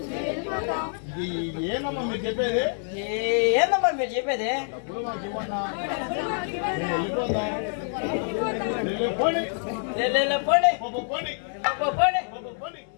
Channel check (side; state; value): right; silent; 61 dB below the other